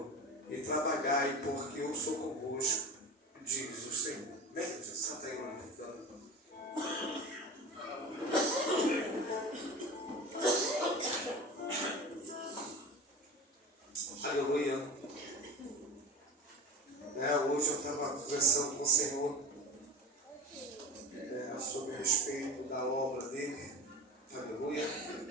e trabalhai, porque eu sou convosco, diz o Senhor. Vem, Jesus, senta aí, mano. Aleluia. Hoje eu estava conversando com o Senhor sobre a respeito da obra dele. Aleluia.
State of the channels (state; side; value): normal; both; correlation 0.32